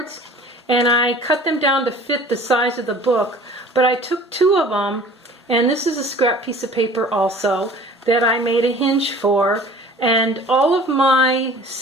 and I cut them down to fit the size of the book, but I took two of them, and this is a scrap piece of paper also that I made a hinge for, and all of my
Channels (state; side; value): normal; both; correlation 0.47